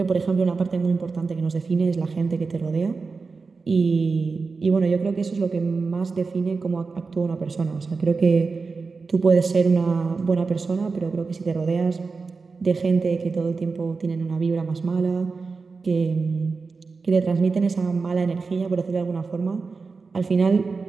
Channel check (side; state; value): left; quieter; 4.4 dB